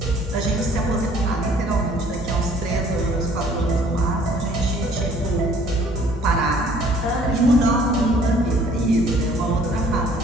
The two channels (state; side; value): normal; both; correlation 0.56